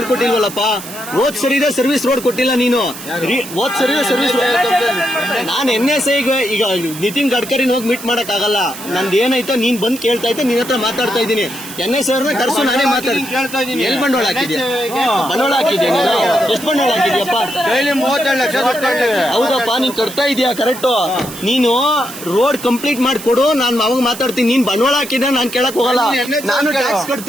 ಹೋದ್ ಸರಿದೆ ಸರ್ವಿಸ್ ರೋಡ್ ಕೊಟ್ಟಿಲ್ಲ ನೀನು. ಹೋದ್ ಸರಿದೆ ಸರ್ವಿಸ್ ನಾನು NSA ಈಗ ನಿತಿನ್ ಗಡ್ಕರಿನ ಹೋಗಿ ಮೀಟ್ ಮಾಡಕ್ ಆಗಲ್ಲ. ನಂದು ಏನಾಯ್ತೋ ನೀನ್ ಬಂದ್ ಕೇಳ್ತಾ ಇದ್ದೆ, ನಿನ್ನ ಹತ್ರ ಮಾತಾಡ್ತಾ ಇದ್ದೀನಿ. NSA ಅವ್ರನ್ನ ಕರ್ಸು, ನಾನೇ ಮಾತಾಡ್ತೀನಿ. ಎಲ್ಲಿ ಬಂಡವಾಳ ಹಾಕಿದ್ಯಾ? ಬಂಡವಾಳ ಹಾಕಿದ್ಯಾ ನೀನು? ಎಷ್ಟು ಬಂಡವಾಳ ಹಾಕಿದ್ಯಪ್ಪ? 37 ಲಕ್ಷ. ಹೌದಪ್ಪ, ನೀನ್ ಕಟ್ತಾ ಇದೀಯಾ ಕರೆಕ್ಟ್. ನೀನು ರೋಡ್ ಕಂಪ್ಲೀಟ್ ಮಾಡ್ಕೊಡು, ನಾನು ಅವಾಗ ಮಾತಾಡ್ತೀನಿ. ನೀನ್ ಬಂಡವಾಳ ಹಾಕಿದ್ರೆ ನಾನು ಕೇಳಕ್ ಹೋಗಲ್ಲ. ನಾನು ಟ್ಯಾಕ್ಸ್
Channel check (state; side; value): noise; right; hiss, 13 dB below the sound